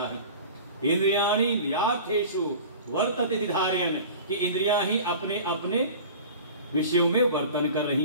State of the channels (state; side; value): inverted; both; correlation -0.39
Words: है। इंद्रियाणि इंद्रियार्थेषु वर्तते धारयन्, कि इंद्रियां ही अपने अपने विषयों में वर्तन कर